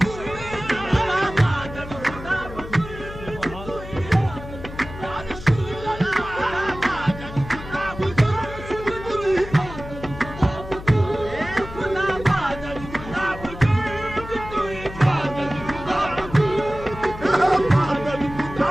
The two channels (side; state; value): left; noise; hum, 12 dB below the sound